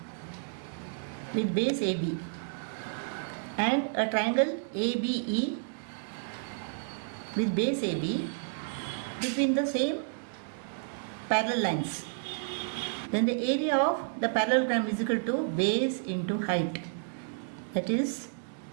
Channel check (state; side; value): silent; left; digital silence